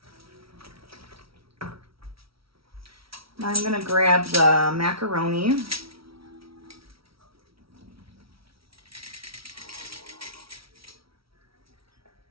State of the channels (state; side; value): late; left; 0.75 ms